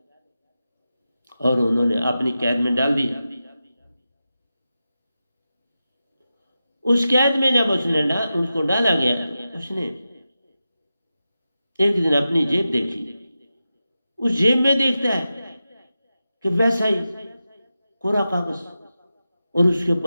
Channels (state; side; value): inverted; both; correlation -0.91